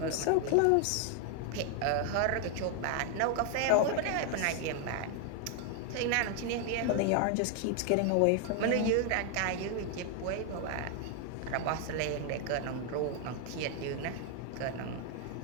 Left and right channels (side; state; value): both; different; correlation 0.00